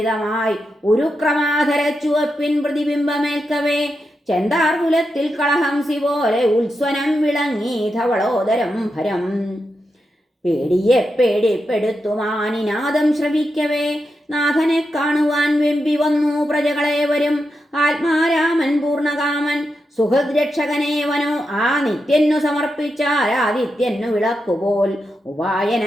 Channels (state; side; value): normal; both; correlation 0.87